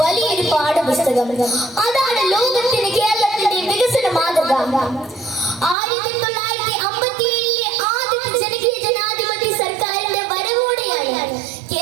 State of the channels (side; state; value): left; drops out; at 5.8 s